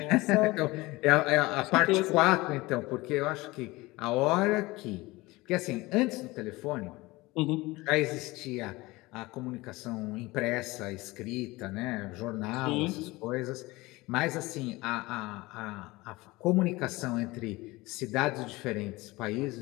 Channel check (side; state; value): right; quieter; 21.2 dB